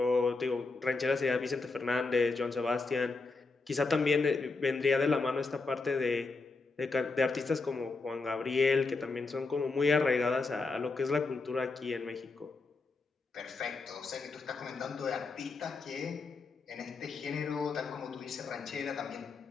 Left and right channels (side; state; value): right; quieter; 3.9 dB